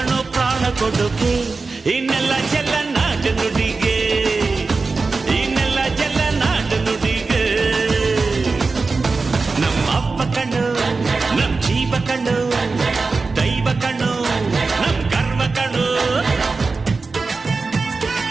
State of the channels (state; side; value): quieter; left; 4.1 dB